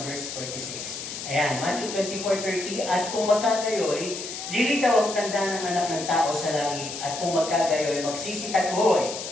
verse 46. Ayan, Matthew 24:30, at kung magkagayoy, lilitaw ang tanda ng anak ng tao sa langit, at kung magkagayoy, magsisitagoy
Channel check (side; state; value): left; noise; hiss, 8 dB below the sound